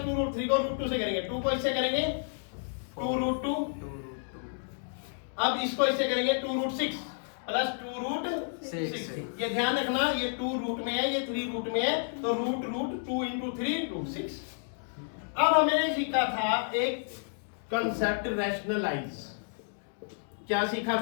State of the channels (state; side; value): silent; right; digital silence